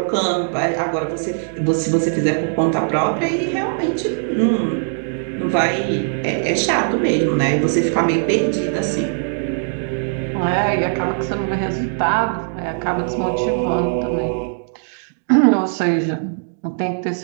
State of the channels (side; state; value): left; silent; digital silence